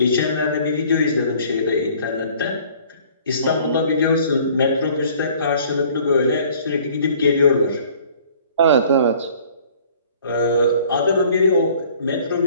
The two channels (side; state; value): both; inverted; correlation -0.54